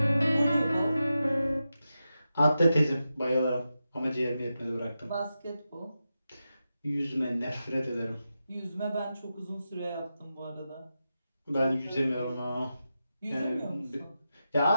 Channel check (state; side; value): inverted; both; correlation -0.90